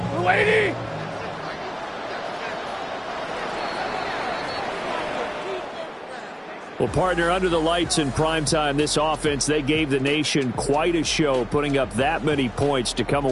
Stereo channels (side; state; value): both; identical; correlation 1.00